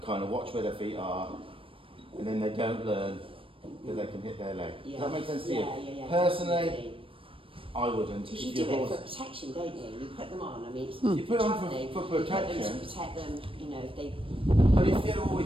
kind of watch where their feet are, and then they don't learn that they can hit their leg. Yeah. Does that make sense to Yeah, you? yeah, yeah, Personally, definitely. I wouldn't. Because you If do your it horse- for protection, don't you? You put them on. I mean, it's You put 'em on travelling, for you put them protection. to protect them. You know, if they, But if you've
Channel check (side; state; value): left; late; 0.26 ms